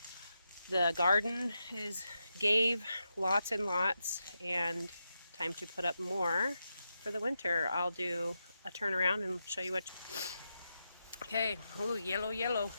The garden gave lots and lots, and time to put up more for the winter. I'll do a turnaround and show you what. Okay, ooh, yellow, yellow.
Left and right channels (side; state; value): both; inverted; correlation -0.87